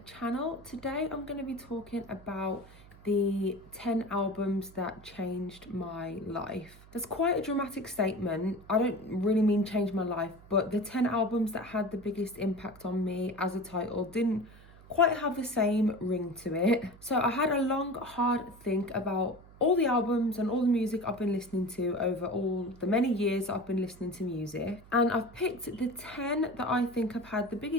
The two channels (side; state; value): right; noise; hum, 22 dB below the sound